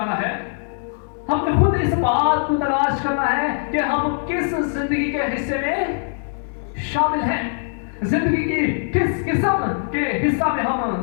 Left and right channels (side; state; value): right; silent; digital silence